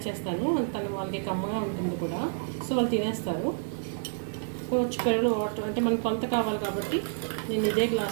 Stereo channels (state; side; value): silent; left; digital silence